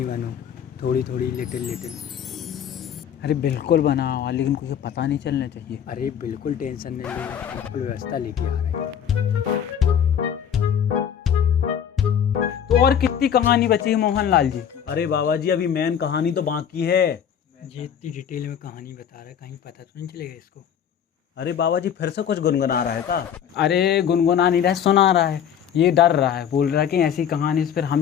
बना, थोड़ी थोड़ी लिटिल। अरे बिल्कुल बना हुआ, लेकिन कुछ पता नहीं चलना चाहिए। अरे बिल्कुल टेंशन नहीं लेना, बिल्कुल व्यवस्था लेके आ रहे हैं। तो और कितनी कहानी बची है मोहनलाल जी? अरे बाबा जी अभी मेन कहानी तो बाकी है। ये इतनी डिटेल में कहानी बता रहा है, कहीं पता तो नहीं चलेगा इसको। अरे बाबा जी फिर से कुछ गुनगुना रहा है क्या? अरे गुनगुना नहीं रहा है, सुना रहा है। ये डर रहा है, बोल रहा है कि ऐसी कहानी से फिर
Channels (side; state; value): right; quieter; 8.7 dB